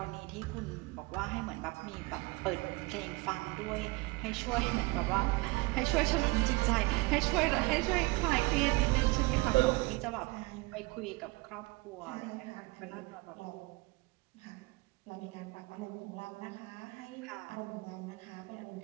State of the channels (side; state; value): left; quieter; 23.7 dB